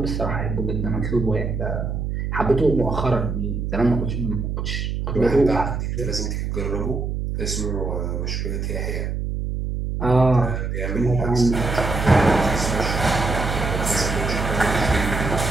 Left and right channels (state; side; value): noise; right; hum, 2 dB below the sound